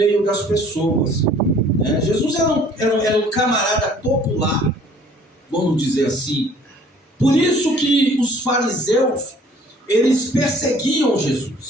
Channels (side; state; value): both; normal; correlation 0.54